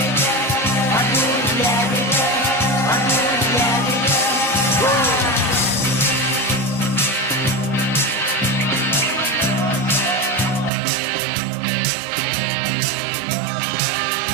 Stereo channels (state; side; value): drops out; left; at 10.7 s